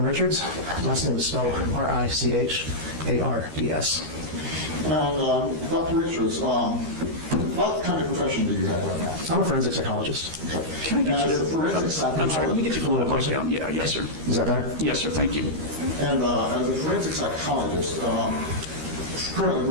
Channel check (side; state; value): left; late; 13 ms